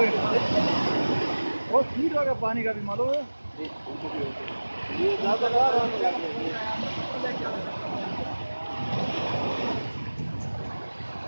बहुत स्पीड होगा पानी का भी मालूम है।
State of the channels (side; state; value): both; inverted; correlation -1.00